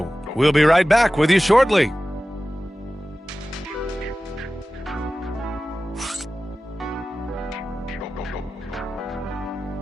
We'll be right back with you shortly.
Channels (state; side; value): normal; both; correlation 0.95